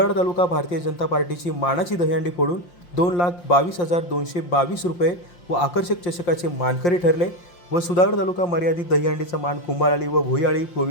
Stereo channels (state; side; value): late; right; 5.7 ms